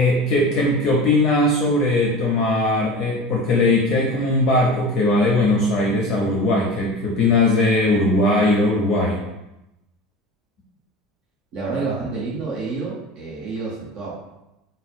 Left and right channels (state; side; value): normal; both; correlation 0.33